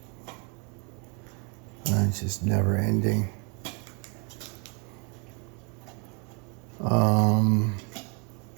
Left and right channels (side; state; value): left; quieter; 34.4 dB